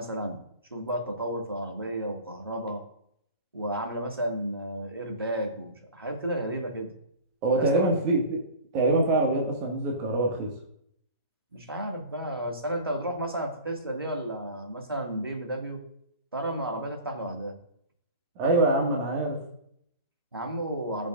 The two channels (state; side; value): inverted; both; correlation -0.36